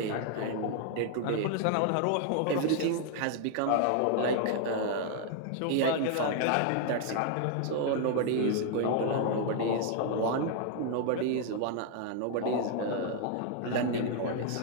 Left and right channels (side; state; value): both; different; correlation 0.00